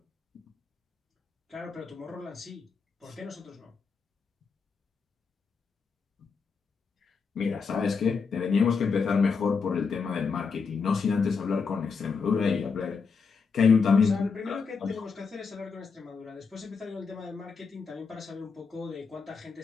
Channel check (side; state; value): right; quieter; 5.3 dB